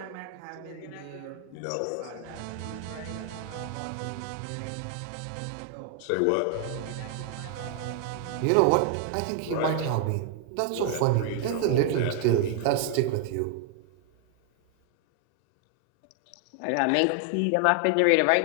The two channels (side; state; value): both; different; correlation 0.00